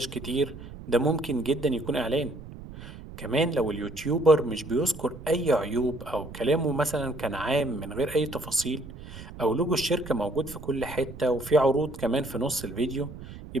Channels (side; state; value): right; noise; rumble, 14 dB below the sound